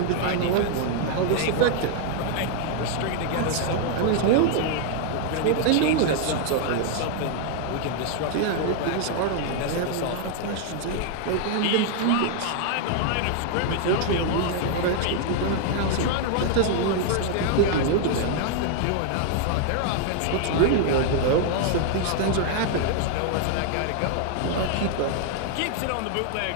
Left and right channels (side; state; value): both; different; correlation 0.00